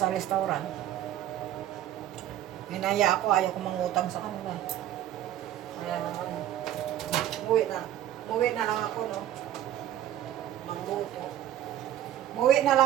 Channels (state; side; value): quieter; left; 12.2 dB